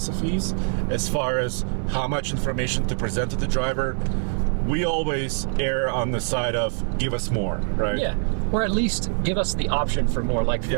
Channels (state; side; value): silent; left; digital silence